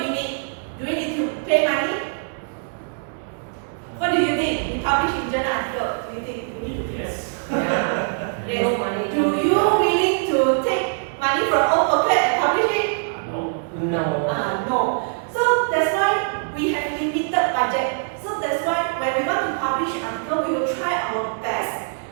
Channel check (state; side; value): silent; left; digital silence